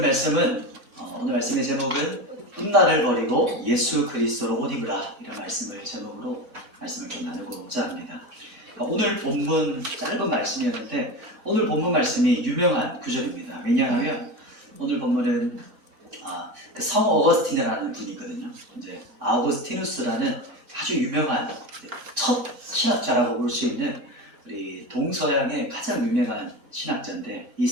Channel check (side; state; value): both; normal; correlation 0.24